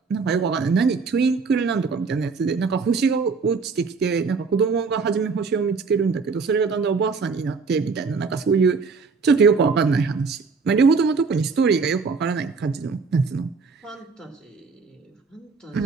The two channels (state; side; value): quieter; left; 4.8 dB